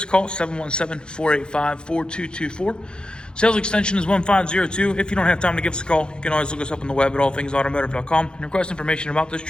a call, 717-485-4224. Sales extension is 1502. If you don't have time to give us a call, you can always look us up on the web at allthingsautomotive.com and request information about this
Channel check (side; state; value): right; late; 0.049 ms